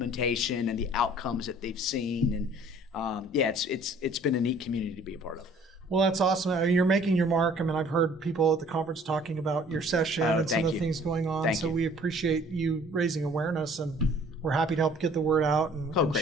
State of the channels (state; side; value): normal; both; correlation 0.54